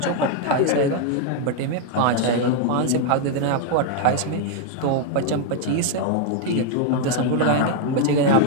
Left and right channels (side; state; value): both; different; correlation 0.01